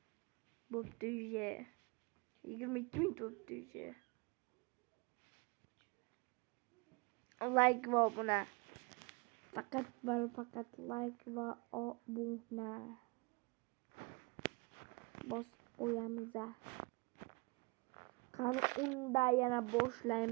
Bo'pti уже. 22 minut bo'pti уже. Like va obuna. Faqat va faqat like va obuna. Bosib qo'yamiz. Qani unda yana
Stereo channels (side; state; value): left; quieter; 28.9 dB